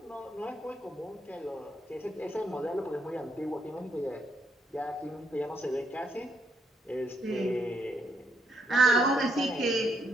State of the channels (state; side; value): normal; both; correlation 0.75